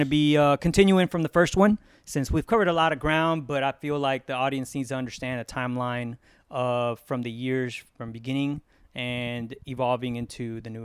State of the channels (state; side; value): identical; both; correlation 1.00